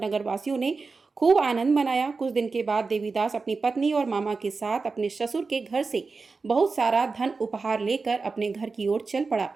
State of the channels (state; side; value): quieter; left; 4.3 dB